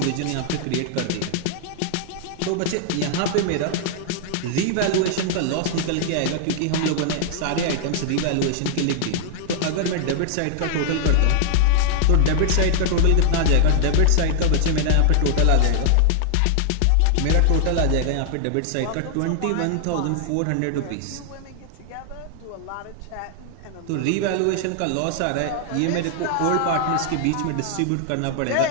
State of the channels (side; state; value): both; different; correlation 0.00